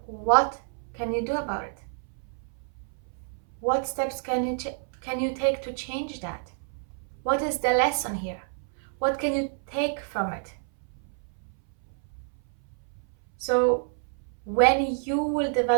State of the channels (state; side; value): silent; left; 59 dB below the other